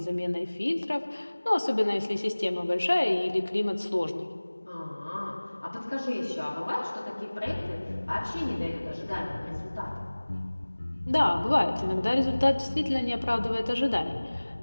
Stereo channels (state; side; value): inverted; both; correlation -1.00